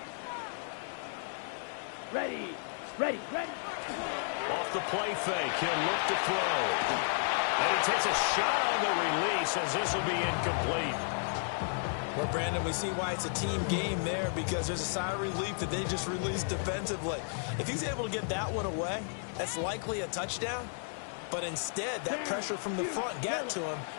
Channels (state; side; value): silent; right; digital silence